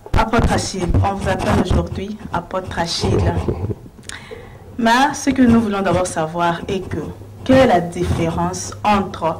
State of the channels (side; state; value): both; identical; correlation 1.00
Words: apôtre Achille, on vous appelle aujourd'hui apôtre Achille. Mais ce que nous voulons d'abord savoir est que, quelle est la différence entre